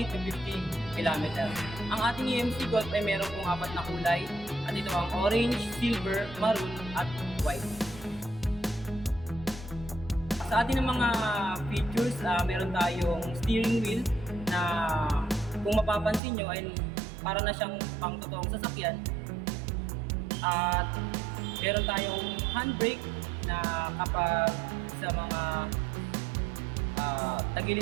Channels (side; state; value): left; drops out; at 16.2 s